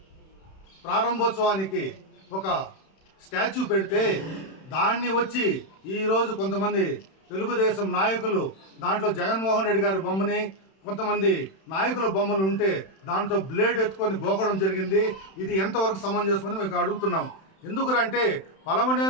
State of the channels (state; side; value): late; right; 31 ms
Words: ప్రారంభోత్సవానికి ఒక స్టాచ్యూ పెడితే దాన్ని వచ్చి ఈరోజు కొంతమంది తెలుగుదేశం నాయకులు దాంట్లో జగన్మోహన్ రెడ్డి గారి బొమ్మని కొంతమంది నాయకుల బొమ్మలు ఉంటే దాంతో బ్లేడ్ ఎత్తుకొని గోకడం జరిగింది. ఇది ఎంతవరకు సమంజసమని మేము అడుగుతున్నాం. ఎందుకంటే